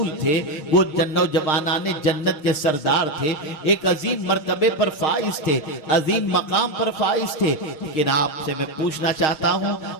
थे, वो नौजवानाने जन्नत के सरदार थे, एक अजीम मर्तबे पर फाइज थे, अजीम मकाम पर फाइज थे। लेकिन आपसे मैं पूछना चाहता हूँ,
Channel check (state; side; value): late; right; 6.5 ms